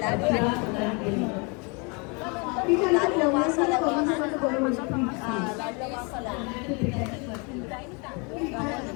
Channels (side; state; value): right; quieter; 32.1 dB